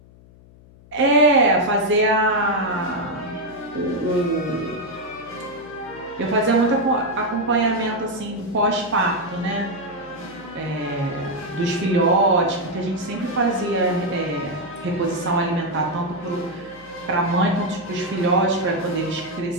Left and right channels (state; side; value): noise; left; hum, 24 dB below the sound